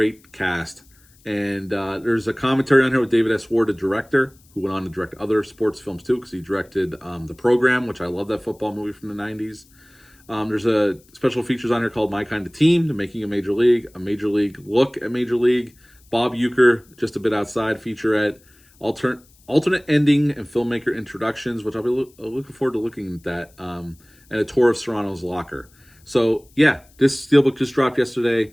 cast. And there's a commentary on here with David S. Ward, the director, who went on to direct other sports films too, because he directed The Program, which I love, that football movie from the 90s. There's a special features on here called My Kind of Team, The Making of Major League, a Major League look at Major League, Bob Uecker, Just a Bit Outside featurette, alternate ending and filmmaker introductions, which I'll be looking forward to looking at that, and a tour of Serrano's locker. So yeah, this steelbook just dropped yesterday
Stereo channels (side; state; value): left; noise; hiss, 30 dB below the sound